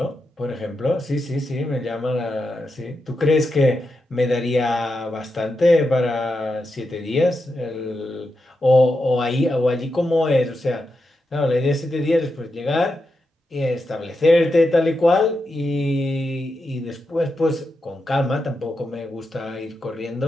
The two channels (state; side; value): normal; both; correlation 0.87